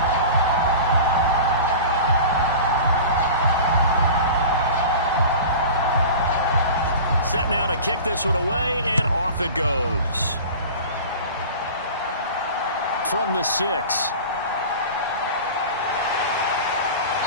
Set now to kick this one away, and off it goes. From the 6.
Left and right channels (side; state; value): both; inverted; correlation -0.36